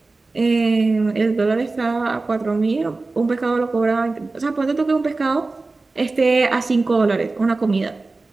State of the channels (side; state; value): left; quieter; 3.5 dB